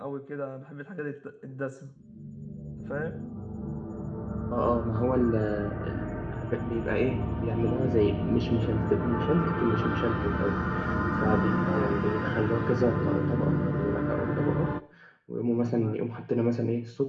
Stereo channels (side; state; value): both; identical; correlation 1.00